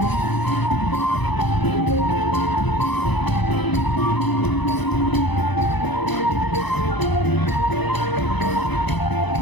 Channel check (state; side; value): late; right; 0.99 ms